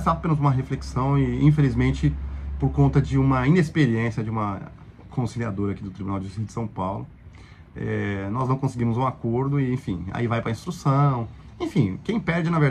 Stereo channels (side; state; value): both; identical; correlation 1.00